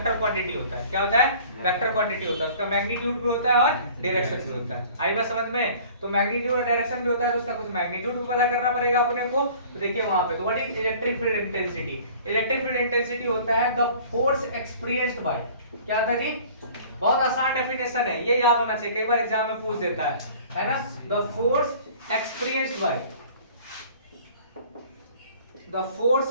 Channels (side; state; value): both; inverted; correlation -0.49